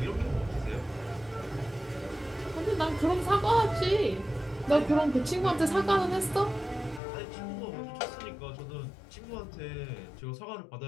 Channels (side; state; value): right; drops out; at 7.0 s